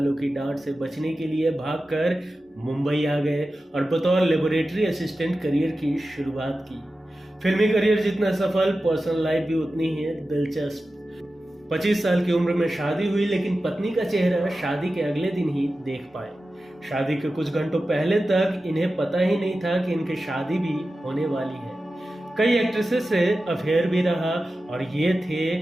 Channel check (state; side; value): normal; both; correlation 0.94